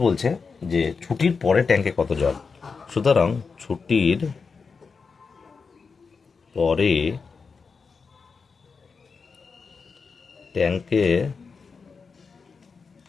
বলছে যে ছুটির পরে ট্যাঙ্কে কত জল, সুতরাং ছুটির পরে ট্যাঙ্কে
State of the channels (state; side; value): quieter; right; 5.1 dB